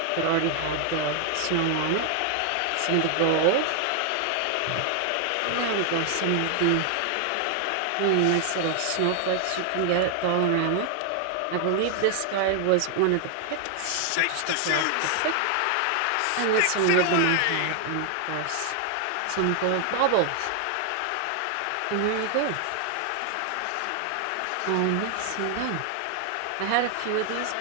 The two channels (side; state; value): both; different; correlation 0.00